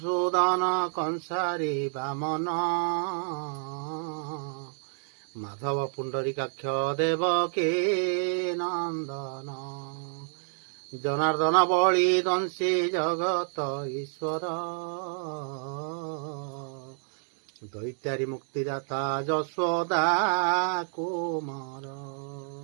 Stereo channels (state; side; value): silent; left; digital silence